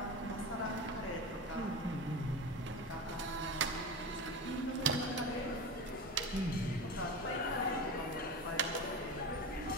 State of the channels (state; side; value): normal; both; correlation 0.26